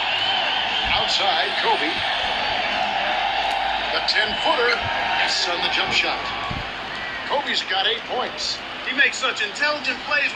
Outside, Kobe. The 10-footer. Yes, on the jump shot. Kobe's got 8 points. He makes such intelligent plays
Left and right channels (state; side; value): identical; both; correlation 1.00